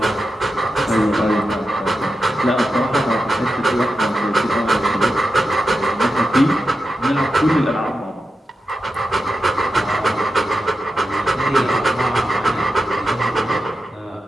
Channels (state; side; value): normal; both; correlation 0.90